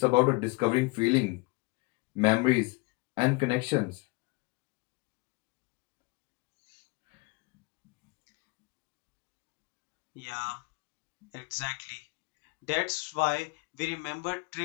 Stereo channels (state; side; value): quieter; right; 26.5 dB